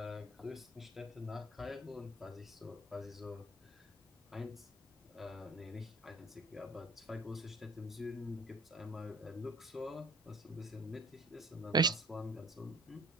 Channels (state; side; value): normal; both; correlation 0.50